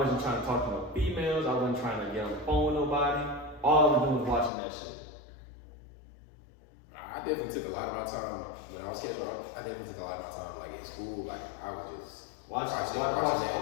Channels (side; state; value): right; drops out; at 4.5 s